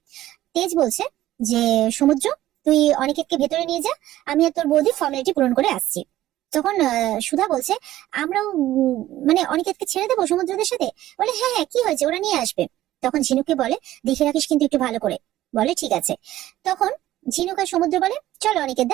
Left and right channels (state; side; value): quieter; left; 14.5 dB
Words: তেজ বলছে যে সমুদ্র তুই অনিকেতকে ভেতরে নিয়ে যা, আমি আর তোর বৌদি ফর্মালিটি পূরণ করে আসছি। তখন সুধা বলছে আমরাও মানে অনিকেতকে ছেড়ে দেবো সমুদ্রদের সাথে? বলে হ্যাঁ হ্যাঁ, কি হয়েছে, ওরা নিয়ে আসবে। তখন ঝিনুককে বলে দেখে রাখিস কিন্তু একটু ভালো করে। বলে ঠিক আছে। তখন ঝিনুক আর সমুদ্র বলে চলো অনিকেত